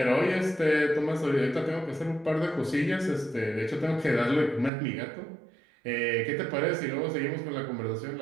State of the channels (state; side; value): drops out; left; at 4.7 s